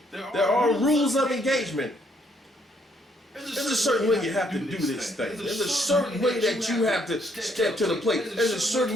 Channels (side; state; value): both; normal; correlation 0.70